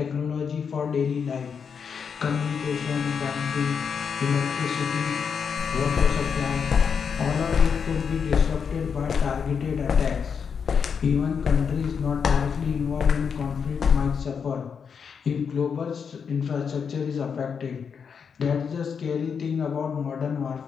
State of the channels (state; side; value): quieter; right; 6.5 dB